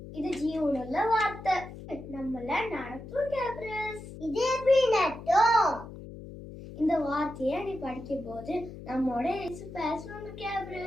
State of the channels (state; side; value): noise; left; hum, 13 dB below the sound